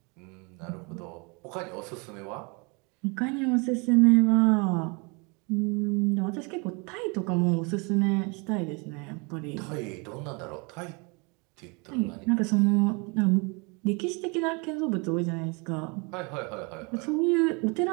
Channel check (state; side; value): quieter; left; 30.9 dB